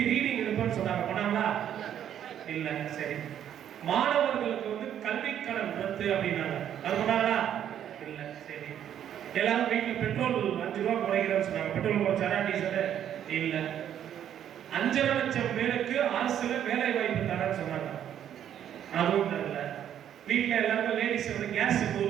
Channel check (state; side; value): quieter; left; 10.0 dB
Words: ரீடிங் எடுப்பேன்னு சொன்னாங்க. பண்ணாங்களா? இல்ல. சரி. மாணவர்களுக்கு வந்து கல்வி கடன் ரத்து அப்படின்னாங்க. அது பண்ணாங்களா? இல்ல. சரி. எல்லாரும் வீட்டில் பெட்ரோல் 5 ரூபா குறைக்கிறேன்னு சொன்னாங்க. பெட்ரோல் குறைச்சாரா? டீசல்? இல்ல. 5 லட்சம் பேருக்கு அரசுல வேலை வாய்ப்பு தரேன்னு சொன்னாங்க. அதுவும் தரல. வீட்டில் எல்லாருக்கும் லேடிஸ் வந்து கேஸ் 100